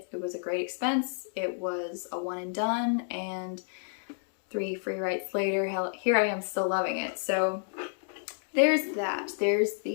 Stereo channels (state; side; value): silent; right; digital silence